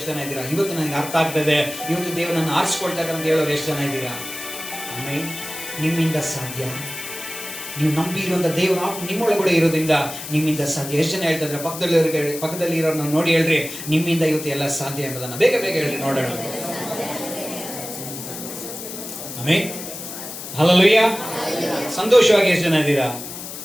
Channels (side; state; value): left; noise; hiss, 10 dB below the sound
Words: ಜನ ಇದ್ದೀರಾ? ಇವತ್ತು ನನಗೆ ಅರ್ಥ ಆಗ್ತದೆ, ಇವತ್ತು ದೇವರನ್ನು ಆರಿಸ್ಕೊಳ್ತಾ ಇದ್ದಾರೆ ಅಂತ ಹೇಳೋರು ಎಷ್ಟು ಜನ ಇದ್ದೀರಾ? ಆಮೇಲೆ ನಿಮ್ಮಿಂದ ಸಾಧ್ಯ. ನೀವು ನಂಬಿರುವಂತ ದೇವರ ಆತ್ಮ ನಿಮ್ಮೊಳಗಡೆ ಇರೋದ್ರಿಂದ ನಿಮ್ಮಿಂದ ಸಾಧ್ಯ. ಎಷ್ಟು ಜನ ಹೇಳ್ತಾ ಇದ್ರೆ ಪಕ್ಕದಲ್ಲಿ ಇರೋರನ್ನ ನೋಡಿ ಹೇಳ್ರಿ, ನಿಮ್ಮಿಂದ ಇವತ್ತು ಎಲ್ಲ ಸಾಧ್ಯ ಎಂಬುದನ್ನು ಬೇಗ ಹೇಳ್ರಿ ನೋಡೋಣ. ಆಮೇಲೆ ಹಲ್ಲೆಲೂಯಾ. ಸಂತೋಷವಾಗಿ ಎಷ್ಟು ಜನ ಇದ್ದೀರಾ?